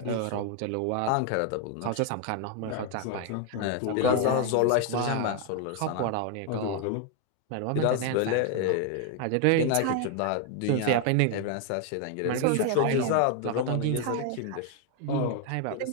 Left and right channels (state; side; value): different; both; correlation 0.01